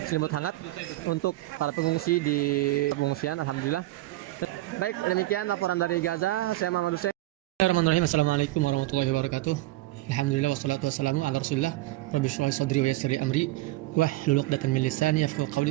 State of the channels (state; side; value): quieter; left; 17.9 dB